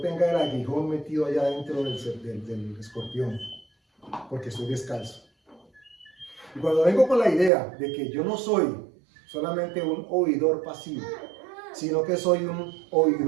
tenga el aguijón metido allá dentro del escorpión, porque estoy descalzo. Y cuando vengo con la idea de que yo no soy solamente un oidor pasivo, sino que soy un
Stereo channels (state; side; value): drops out; left; at 7.5 s